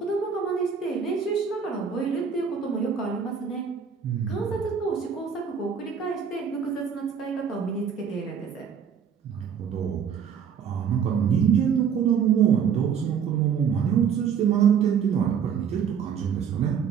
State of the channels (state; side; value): quieter; left; 7.3 dB